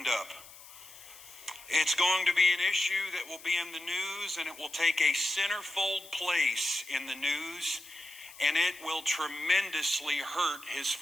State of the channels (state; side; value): noise; left; hiss, 18 dB below the sound